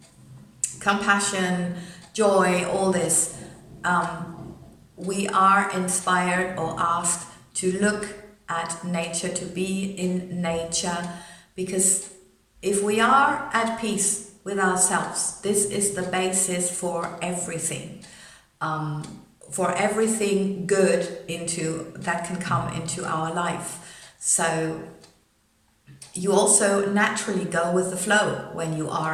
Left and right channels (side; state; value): both; identical; correlation 1.00